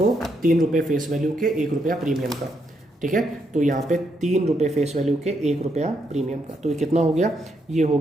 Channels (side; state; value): both; normal; correlation 0.78